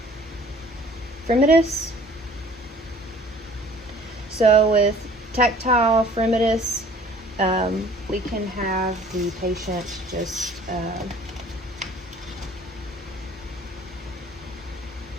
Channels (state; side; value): normal; both; correlation 0.52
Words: fremitus. So with tactile fremitus, we can have the patient just